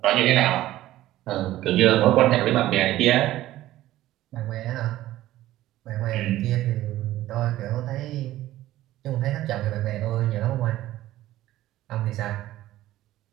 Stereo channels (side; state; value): left; quieter; 14.9 dB